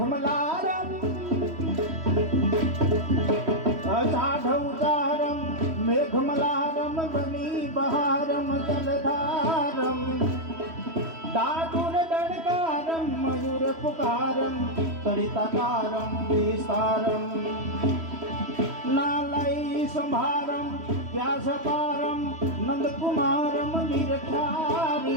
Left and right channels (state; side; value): late; left; 3.1 ms